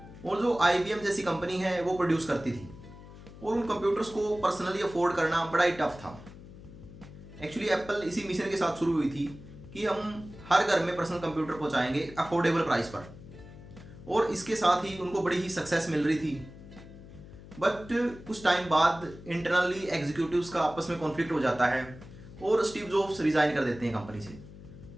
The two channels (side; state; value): left; noise; hum, 17 dB below the sound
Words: और जो आईबीएम जैसी कंपनी है वो प्रोड्यूस करती थी और उन कंप्यूटर्स को पर्सनली अफोर्ड करना बड़ा ही टफ था। एक्चुअली एप्पल इसी मिशन के साथ शुरू हुई थी कि हम हर घर में पर्सनल कंप्यूटर पहुंचाएंगे अफोर्डेबल प्राइस पर, और इसके साथ ही उनको बड़ी ही सक्सेस मिल रही थी। बट कुछ टाइम बाद इंटरनली एग्जीक्यूटिव्स का आपस में कॉन्फ्लिक्ट हो जाता है और स्टीव जॉब्स रिजाइन कर देते हैं कंपनी से